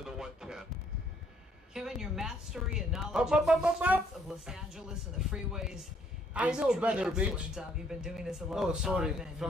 the 110. Kevin, your mastery and knowledge of the streets of Los Angeles and the freeways. I know better, bitch. You've been doing this a long time, and you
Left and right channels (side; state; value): both; normal; correlation 0.66